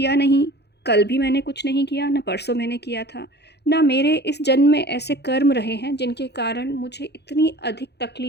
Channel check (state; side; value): late; right; 0.49 ms